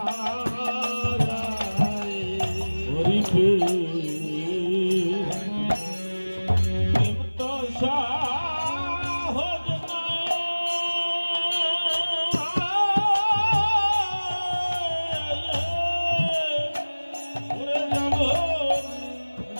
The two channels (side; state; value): both; inverted; correlation -1.00